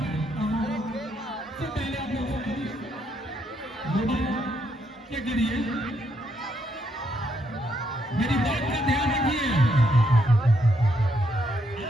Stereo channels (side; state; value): both; normal; correlation 0.76